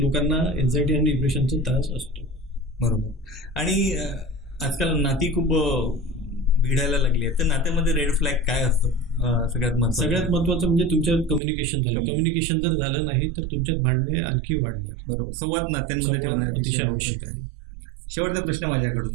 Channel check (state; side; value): drops out; left; at 11.4 s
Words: एन्झायटी आणि डिप्रेशनचा त्रास असतो. बरोबर. आणि आजकाल नाती खूप भिडायला लागली आहे तर नात्यामध्ये रेड फ्लॅग काय असतो? सगळ्यात महत्वाचं म्हणजे तुमच्यात कम्युनिकेशन झालं. कम्युनिकेशन जर झालं नाही तर तुमच्यात भांडणे आणखी वाढणार. बरोबर. संवाद नात्यांमध्ये अतिशय आवश्यक आहे. शेवटचा प्रश्न